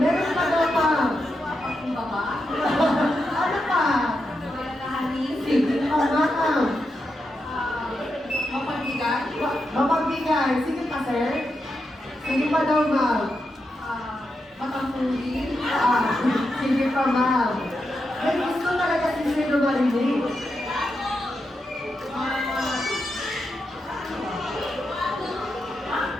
pa daw pa. Ano pa? Sige pa, ma'am. Mapagbigay. Sige pa, sir. Sige pa daw, ma'am. Sige pa, ma'am. May gusto talaga si sir na marinig.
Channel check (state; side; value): normal; both; correlation 0.86